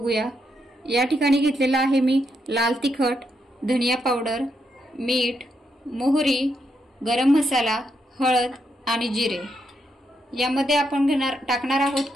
या ठिकाणी घेतलेला आहे मी लाल तिखट, धनिया पावडर, मीठ, मोहरी, गरम मसाला, हळद आणि जिरे। यामध्ये आपण टाकणार आहोत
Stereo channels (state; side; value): normal; both; correlation 0.80